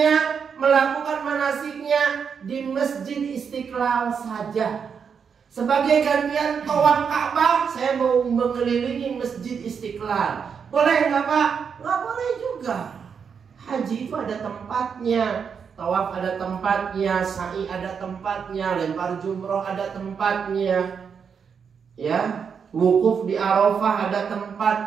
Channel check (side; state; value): left; quieter; 6.6 dB